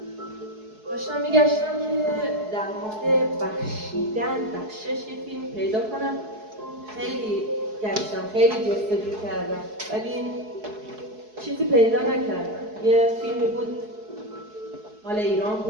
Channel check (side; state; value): left; late; 4.7 ms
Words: داشتم میگشتم که در مورد بخشیدن، بخشش یه فیلم پیدا کنم. خیلی گشتم، خیلی جستجو کردم ولی چیزی پیدا نکردم. یه فیلمی بود مال ایران